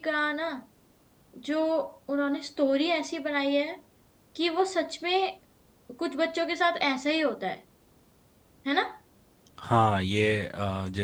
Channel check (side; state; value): both; identical; correlation 1.00